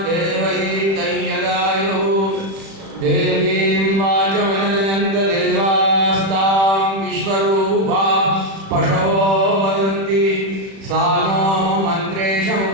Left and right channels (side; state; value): left; late; 36 ms